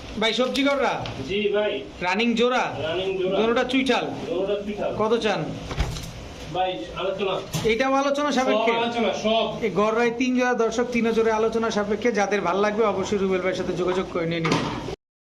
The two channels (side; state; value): both; identical; correlation 1.00